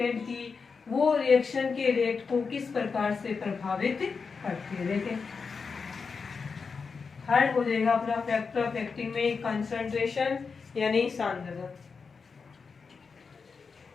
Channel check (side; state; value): right; quieter; 5.2 dB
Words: की वो रिएक्शन के रेट को किस प्रकार से प्रभावित करती है। देखें थर्ड हो जाएगा अपना फैक्टर अफेक्टिंग में कंसंट्रेशन यानी सांद्रता।